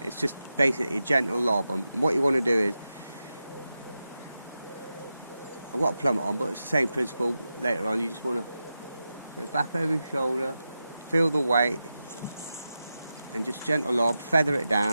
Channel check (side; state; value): both; inverted; correlation -0.91